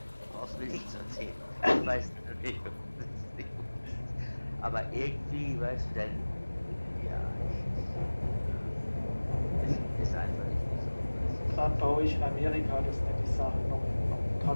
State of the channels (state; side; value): inverted; both; correlation -1.00